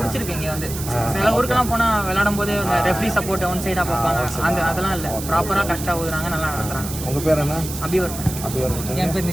இங்கே வந்து சில ஊருக்கெல்லாம் போனால் விளையாடும் போது ரெஃப்ரி சப்போர்ட் ஒன் சைடாக பார்ப்பாங்க. அதெல்லாம் இல்லை, ப்ராப்பராக கரெக்டாக ஊதுறாங்க, நல்லா நடத்துறாங்க. உங்கள் பேர் என்ன? அபிவர். என் பேர்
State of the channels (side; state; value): right; noise; hiss, 9 dB below the sound